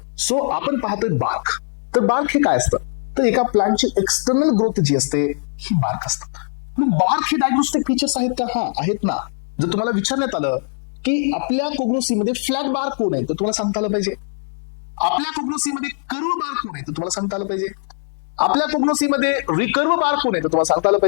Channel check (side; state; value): right; silent; digital silence